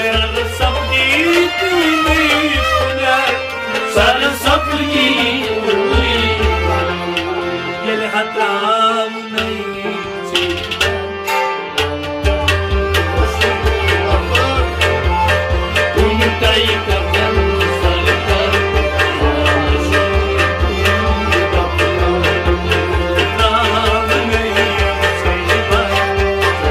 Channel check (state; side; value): identical; both; correlation 1.00